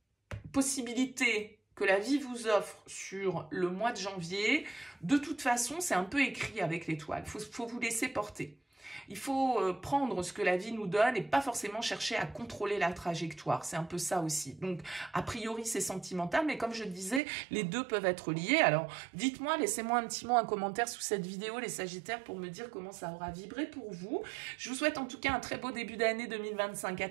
possibilité que la vie vous offre sur le mois de janvier. De toute façon, c'est un peu écrit avec l'étoile. Faut vous laisser porter. Il faut prendre ce que la vie nous donne et pas forcément chercher à contrôler la trajectoire. C'est un peu ça aussi. Donc, a priori, c'est sentimental, mais comme je le disais, les deux peuvent être liés. Alors, dites-moi, laissez-moi un petit mot, un commentaire sous cette vidéo, les Sagittaires, pour me dire comment ça aura vibré pour vous. Je vous souhaite en tout cas un très beau début d'année 2025. À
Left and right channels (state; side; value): drops out; left; at 17.2 s